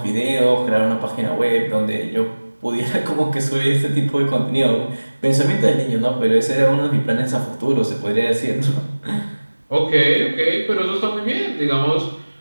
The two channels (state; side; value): inverted; both; correlation -1.00